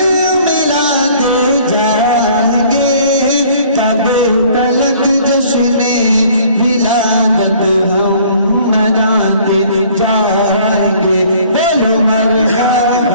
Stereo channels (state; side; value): inverted; both; correlation -0.55